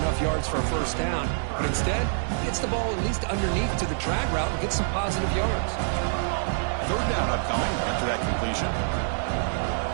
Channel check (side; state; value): left; silent; digital silence